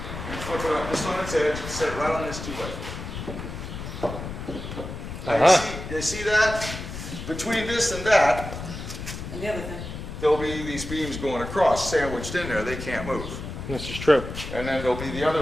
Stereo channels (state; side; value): noise; left; rumble, 8 dB below the sound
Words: And flip it up just on its edge and set it right on this two-way. You see that? Between this and that, And the other thing. there'll be these beams going across, sandwiched in there. They can't move. This is true. And then there'll be the